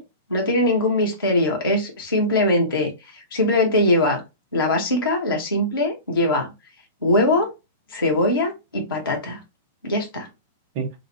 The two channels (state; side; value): inverted; both; correlation -0.31